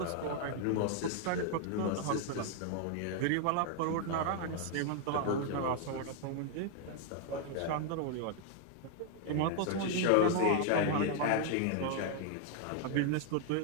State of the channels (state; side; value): different; both; correlation 0.00